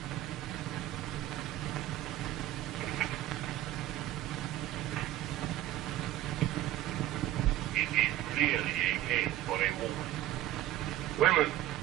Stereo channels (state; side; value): quieter; left; 14.2 dB